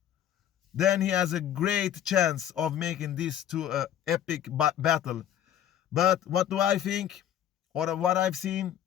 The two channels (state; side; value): quieter; right; 10.5 dB